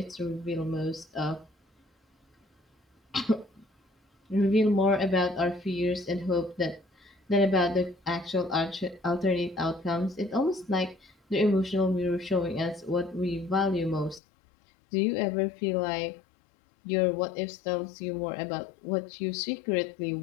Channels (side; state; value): right; drops out; at 14.2 s